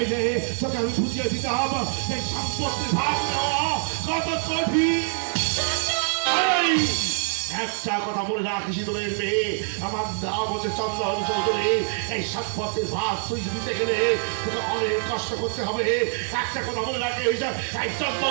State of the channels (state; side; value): silent; left; 62 dB below the other